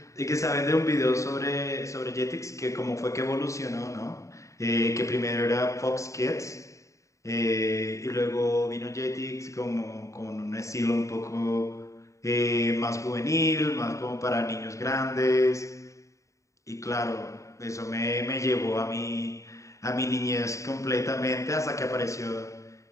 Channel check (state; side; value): late; right; 0.15 ms